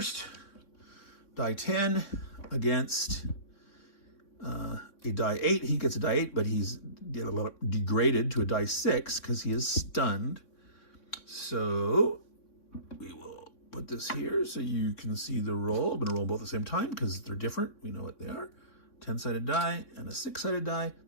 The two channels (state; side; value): late; right; 3.6 ms